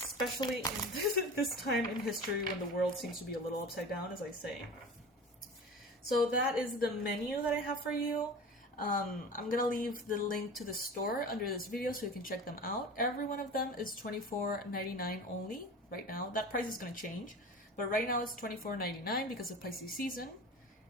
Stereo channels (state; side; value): normal; both; correlation 0.35